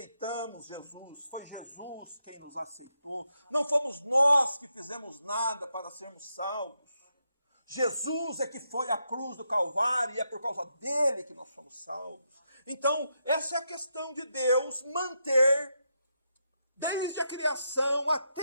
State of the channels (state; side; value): inverted; both; correlation -0.82